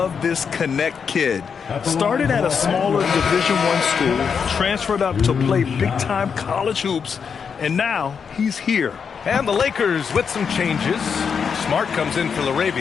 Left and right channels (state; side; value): quieter; right; 6.4 dB